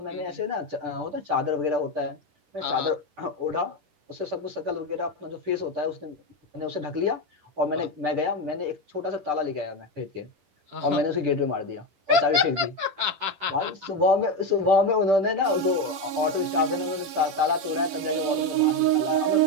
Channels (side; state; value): left; late; 10 ms